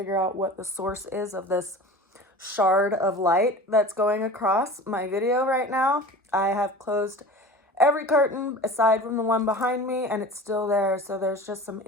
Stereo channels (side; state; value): both; normal; correlation 0.37